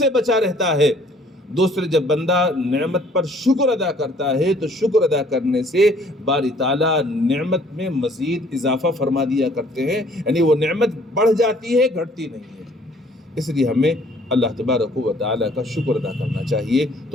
بچا رہتا ہے، دوسرے جب بندہ نعمت پر شکر ادا کرتا ہے تو شکر ادا کرنے سے باری تعالیٰ نعمت میں مزید اضافہ فرما دیا کرتے ہیں، یعنی وہ نعمت بڑھ جاتی ہے، گھٹتی نہیں ہے۔ اس لیے ہمیں اللہ تبارک و تعالیٰ کا شکر ادا کرنا چاہیے۔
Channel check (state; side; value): normal; both; correlation 0.58